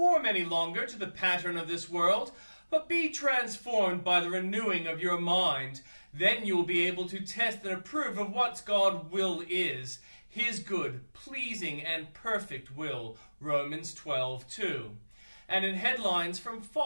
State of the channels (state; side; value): inverted; both; correlation -1.00